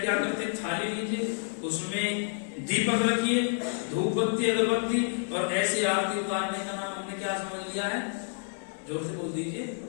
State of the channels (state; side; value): silent; right; 58 dB below the other